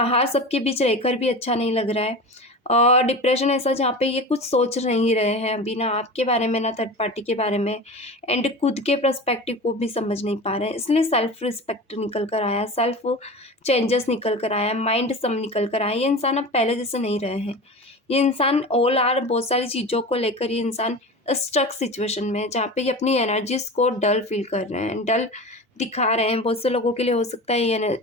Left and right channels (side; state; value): both; normal; correlation 0.31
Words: सबके बीच रहकर भी अच्छा नहीं लग रहा है, और डिप्रेशन ऐसा जहाँ पे ये कुछ सोच नहीं रहे हैं अभी, ना आपके बारे में ना थर्ड पार्टी के बारे में, एंड खुद के पर्सपेक्टिव को भी समझ नहीं पा रहे हैं, इसलिए सेल्फ रिस्पेक्ट निकल कर आया, सेल्फ चेंजेस निकल कर आया, माइंड सब निकल कर आया। ये इंसान अब पहले जैसे नहीं रहे हैं, ये इंसान ऑल आर बहुत सारी चीज़ों को लेकर ये इंसान स्ट्रक सिचुएशन में है, जहाँ पे ये अपनी एनर्जीज को डल फील कर रहे हैं, डल दिखा रहे हैं। बहुत से लोगों के लिए हो सकता है ये